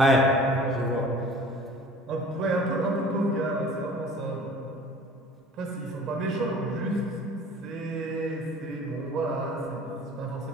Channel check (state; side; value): normal; both; correlation 0.46